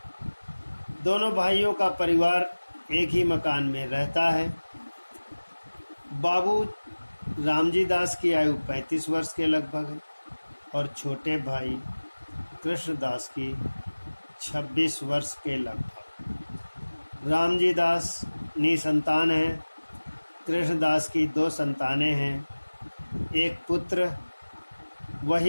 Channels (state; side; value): inverted; both; correlation -1.00